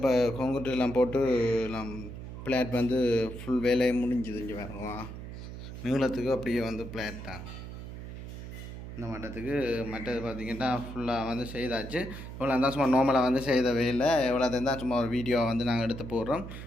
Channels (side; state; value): right; noise; hum, 10 dB below the sound